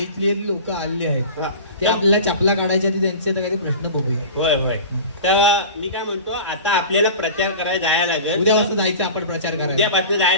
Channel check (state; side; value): inverted; both; correlation -0.35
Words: लोक आले आहेत हा. ते आपल्याला चपला काढायच्या आधी त्यांचे काही प्रश्न बघूया होय होय तर मी काय म्हणतो आता आपल्याला प्रचार करायला जायला लागेल उद्यापासून जायचं आपण प्रचार करायला उद्यापासून